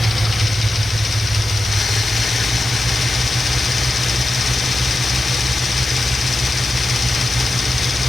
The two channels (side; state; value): both; normal; correlation 0.91